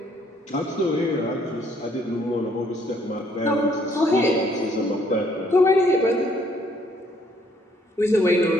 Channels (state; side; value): normal; both; correlation 0.65